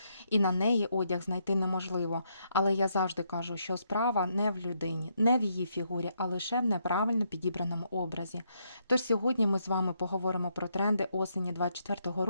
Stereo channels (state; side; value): inverted; both; correlation -0.76